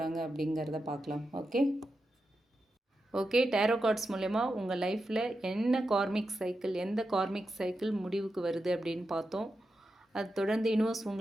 அப்படிங்கிறத பார்க்கலாம். ஓகே, டேரோ கார்ட்ஸ் மூலயமா உங்கள் லைஃப்பில் என்ன கார்மிக் சைக்கிள், எந்த கார்மிக் சைக்கிள் முடிவுக்கு வருது அப்படின்னு பார்த்தோம். அது தொடர்ந்து யூனிவர்ஸ்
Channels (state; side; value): normal; both; correlation 0.89